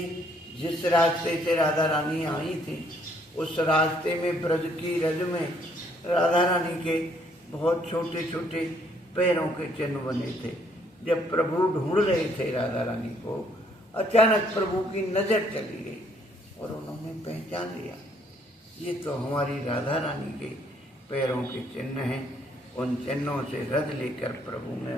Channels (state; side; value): normal; both; correlation 0.66